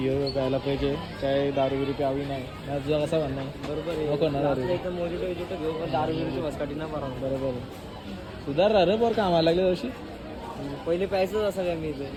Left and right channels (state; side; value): identical; both; correlation 1.00